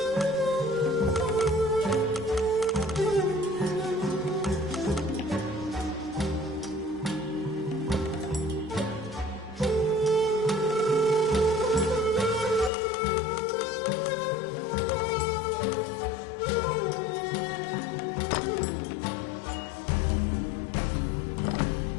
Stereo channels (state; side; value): drops out; right; at 12.7 s